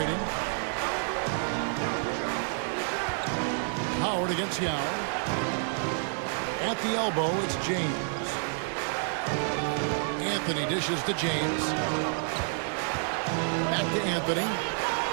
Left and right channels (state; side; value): silent; left; 58 dB below the other